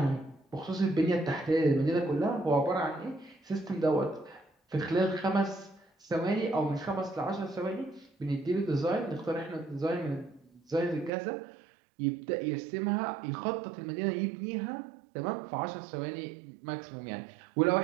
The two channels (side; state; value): left; drops out; at 11.1 s